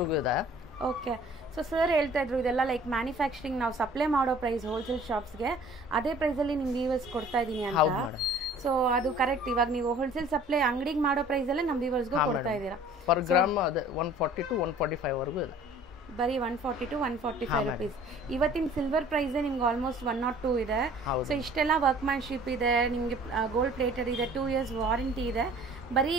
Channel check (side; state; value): both; normal; correlation 0.50